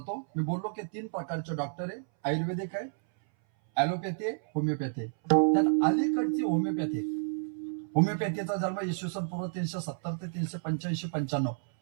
मी बोललो की 3 प्रकारचे डॉक्टर आहे. आयुर्वेदिक आहे, ऍलोपॅथी आहे, होमिओपॅथी आहे. त्यात अलीकडची होमिओपॅथी. होमिओपॅथीचा जन्म इसवी पूर्व 370 ते 385-95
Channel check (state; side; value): silent; left; 57 dB below the other